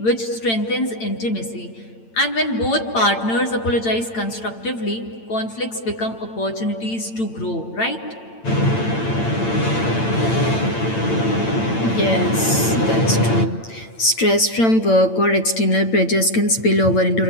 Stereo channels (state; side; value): late; right; 8.9 ms